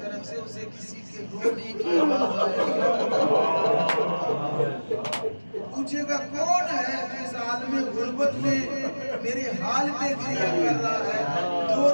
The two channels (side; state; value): both; inverted; correlation -1.00